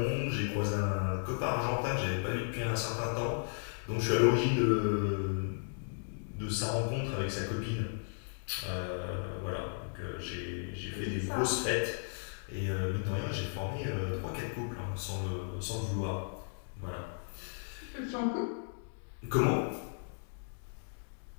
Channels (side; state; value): right; silent; digital silence